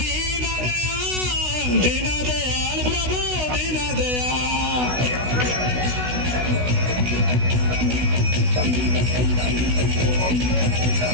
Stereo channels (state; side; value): late; left; 16 ms